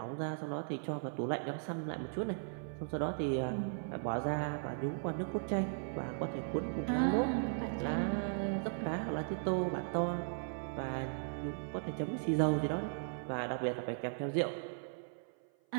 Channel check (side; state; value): left; silent; 53 dB below the other